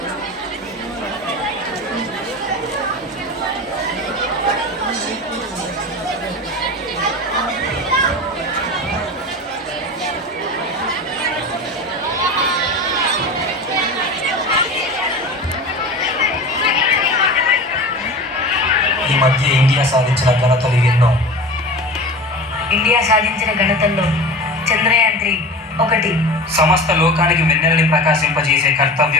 ఈ మధ్య ఇండియా సాధించిన ఘనతలు ఎన్నో. ఇండియా సాధించిన ఘనతల్లో చంద్రయాన్-3 ఒకటి. సమస్త లోకానికి వెన్నెలని ప్రకాశింపజేసే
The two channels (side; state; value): both; normal; correlation 0.32